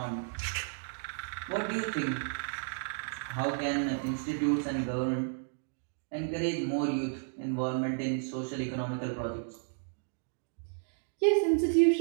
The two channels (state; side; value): silent; left; digital silence